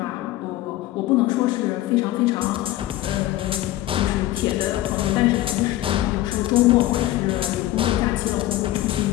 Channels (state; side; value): quieter; right; 15.4 dB